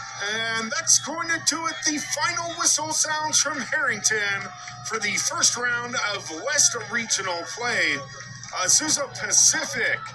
And that's going to do it. The final whistle sounds from Harrington for the first round of West Regional play. Azusa Pacific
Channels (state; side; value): identical; both; correlation 1.00